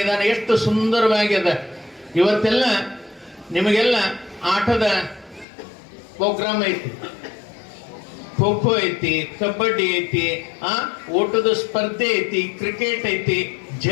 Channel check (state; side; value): drops out; right; at 5.5 s